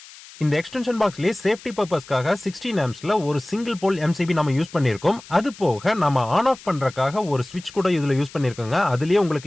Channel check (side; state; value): left; noise; hiss, 19 dB below the sound